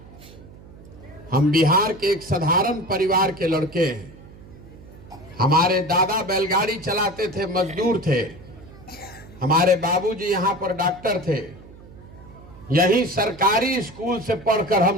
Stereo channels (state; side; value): noise; right; hum, 20 dB below the sound